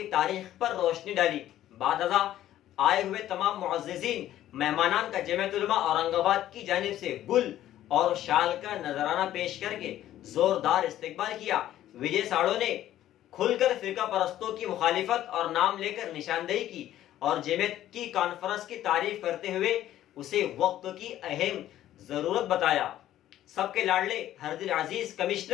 تاریخ پر روشنی ڈالی۔ بعد ازاں آئے ہوئے تمام معززین مہمانان کا جمعیت علماء اورنگ آباد کی جانب سے گل اور شال کا نذرانہ پیش کر کے زوردار استقبال کیا۔ وجے ساڑو نے کھل کر فرقہ پرستوں کی مخالفت اور نام لے کر نشاندہی کی اور جمعیت کی کانفرنس کی تعریف کرتے ہوئے اسے وقت کی اہم ضرورت بتایا۔ سب کے لاڈلے ہر دل عزیز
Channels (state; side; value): quieter; right; 12.8 dB